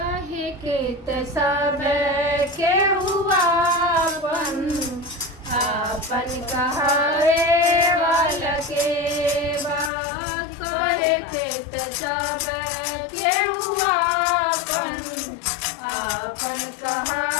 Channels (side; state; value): right; drops out; at 9.9 s